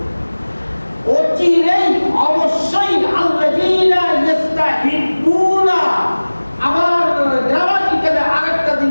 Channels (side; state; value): both; inverted; correlation -1.00